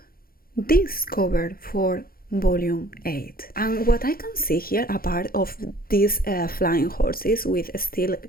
this cover for volume 8. And what I can see here, apart of these flying horses, which still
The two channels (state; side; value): late; right; 0.43 ms